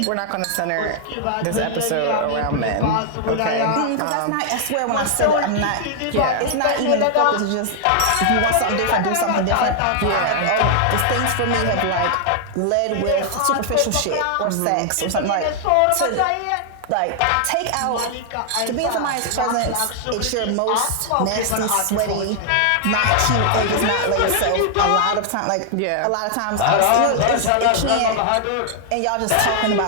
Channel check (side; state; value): both; different; correlation 0.00